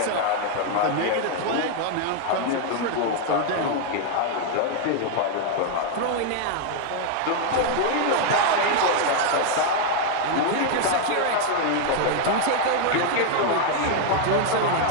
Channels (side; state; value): both; different; correlation 0.00